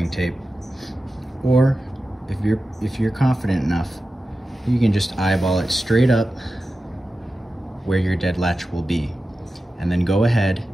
tape, or if you're confident enough, you can just eyeball it straight up where your dead latch will be. And then go ahead,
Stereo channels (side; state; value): both; normal; correlation 0.93